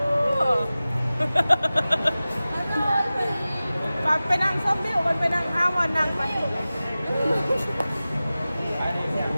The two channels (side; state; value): both; inverted; correlation -0.96